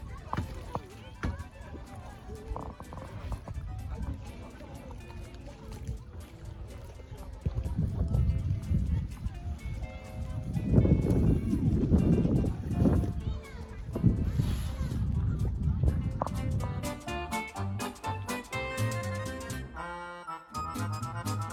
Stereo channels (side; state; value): both; identical; correlation 1.00